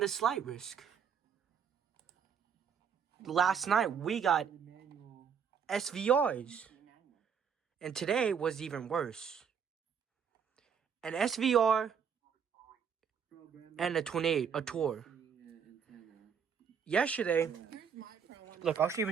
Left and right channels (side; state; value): left; quieter; 7.2 dB